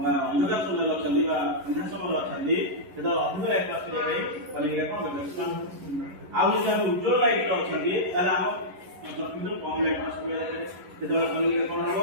ଅନ୍ଧକାର ସମୟରେ ଅଛନ୍ତି ବା ଅନ୍ଧାର ସମୟରେ ଅଛନ୍ତି ସେତେବେଳେ ଅଧିକ ଲାଇଟ୍ ପାସ୍ କରିବା ପାଇଁ କନିକା କ'ଣ ଏକ୍ସପାଣ୍ଡ ଆଉ ଯଦି ଆମେ ଉଜ୍ଜ୍ୱଳ ଲାଇଟ୍ ଅଛନ୍ତି ତାହେଲେ ଆମ ଚକ୍ଷୁରୁ କମ ଲାଇଟ୍ ପାସ୍ କରିବା ସେତେବେଳେ କନିକା କ'ଣ ହବ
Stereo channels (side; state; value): left; late; 11 ms